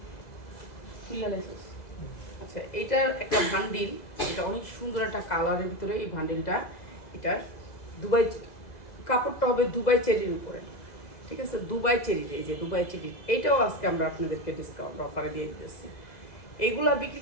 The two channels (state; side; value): late; right; 2.0 ms